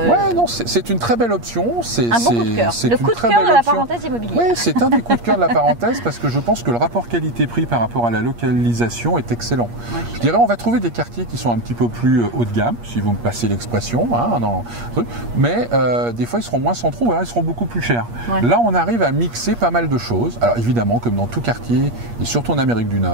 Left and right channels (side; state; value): left; late; 8.5 ms